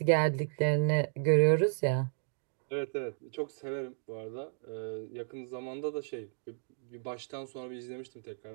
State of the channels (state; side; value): silent; left; digital silence